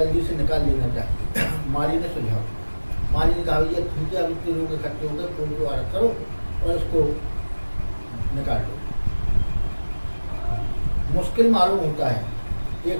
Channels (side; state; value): both; inverted; correlation -1.00